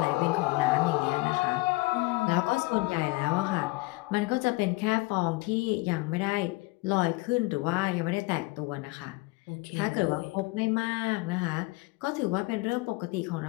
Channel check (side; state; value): right; quieter; 23.1 dB